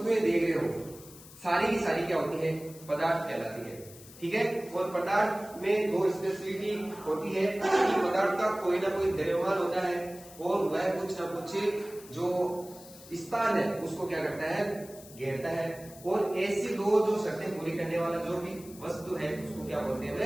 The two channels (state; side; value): noise; left; hiss, 19 dB below the sound